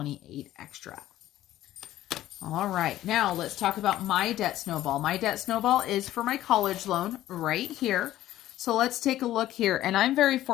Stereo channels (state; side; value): quieter; right; 13.9 dB